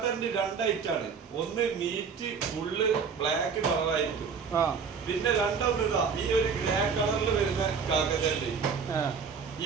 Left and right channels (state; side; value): quieter; left; 5.9 dB